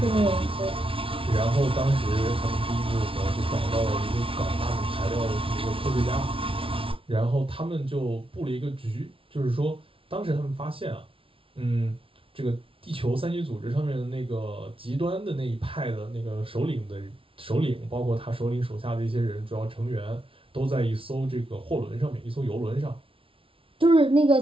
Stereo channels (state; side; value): late; left; 0.26 ms